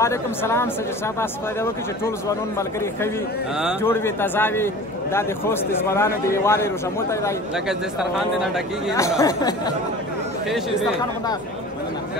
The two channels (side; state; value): both; normal; correlation 0.40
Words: سلام سید صاحب تاسو فایده وکړي چې ټول ځوانان ملګري ښه وي جوړ وي تازه وي. دا د خوست د ځوانانو د یووالي روژموتی دی لکه دسترخوان دې نه ډکېږي ښې شي